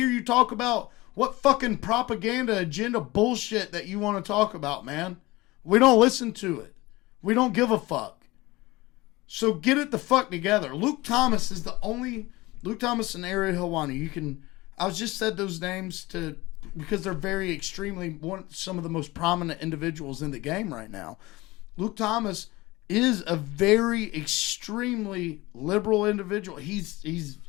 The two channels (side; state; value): right; quieter; 20.7 dB